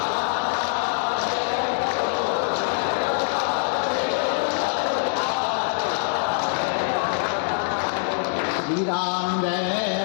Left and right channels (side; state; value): right; silent; digital silence